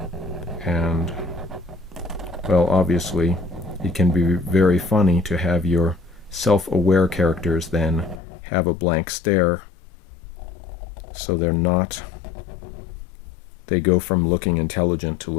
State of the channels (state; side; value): drops out; right; at 8.2 s